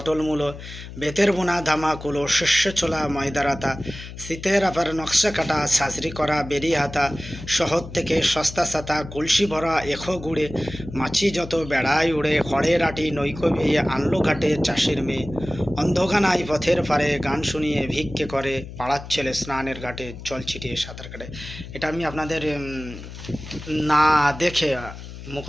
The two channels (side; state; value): left; noise; hum, 13 dB below the sound